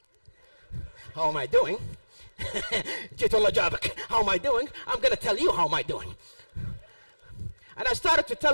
How am I doing? How am I doing? I'm going to tell you how am I doing. And I started to tell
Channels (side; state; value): both; inverted; correlation -1.00